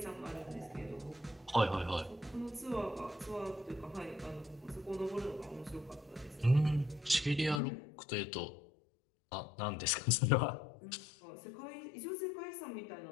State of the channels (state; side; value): drops out; right; at 7.6 s